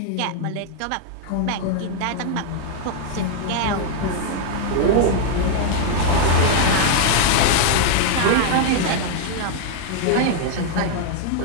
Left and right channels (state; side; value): different; both; correlation 0.00